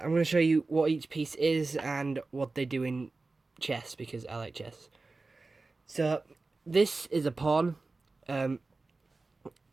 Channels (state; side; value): quieter; left; 3.6 dB